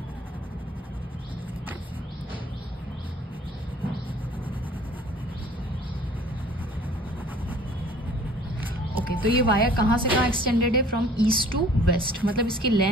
Okay, तो ये वायर कहाँ से कहाँ एक्सटेंडेड है? फ्रॉम ईस्ट टू वेस्ट, मतलब इसकी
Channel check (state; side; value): normal; both; correlation 0.52